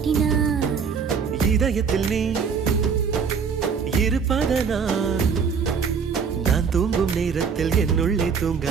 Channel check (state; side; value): quieter; left; 6.2 dB